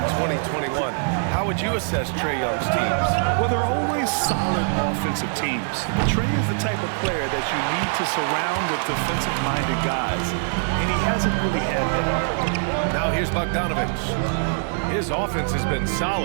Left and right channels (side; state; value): left; silent; 57 dB below the other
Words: 2021, how would you assess Trae Young's teams? Well, they're always solid offensive teams. Trae is the type of player that you need to surround with defensive-minded guys, and he hasn't really had that. Now here's Bogdanovich. His offense has been